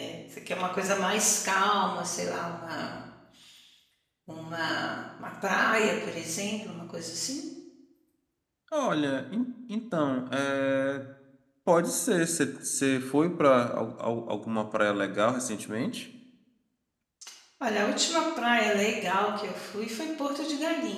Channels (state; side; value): identical; both; correlation 1.00